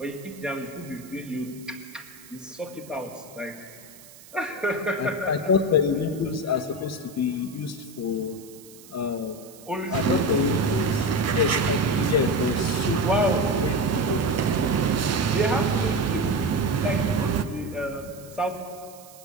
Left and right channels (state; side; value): noise; right; hiss, 21 dB below the sound